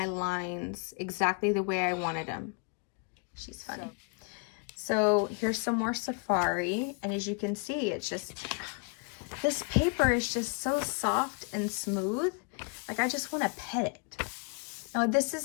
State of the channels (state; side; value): quieter; right; 36.7 dB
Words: lines exactly the way I wanted them. She's funny. So here's some more Safari, and as you can see, it's just, this paper is just so soft and smooth. Like, I just want to pet it. Now, this